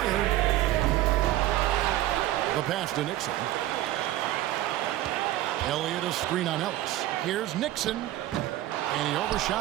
The pass to Nixon. Elliott a screen on Ellis. Here's Nixon. And he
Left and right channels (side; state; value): left; quieter; 14.7 dB